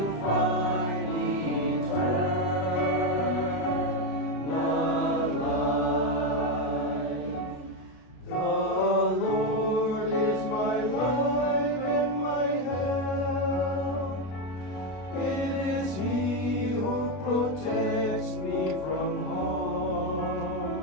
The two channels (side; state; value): right; late; 32 ms